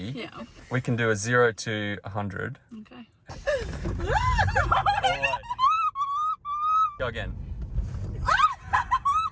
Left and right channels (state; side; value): identical; both; correlation 1.00